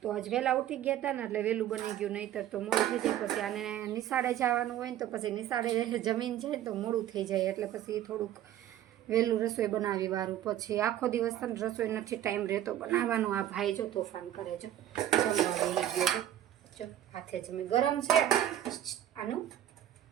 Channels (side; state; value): left; quieter; 11.9 dB